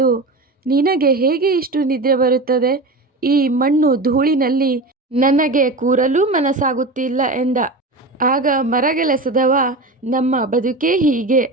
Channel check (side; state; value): left; quieter; 3.0 dB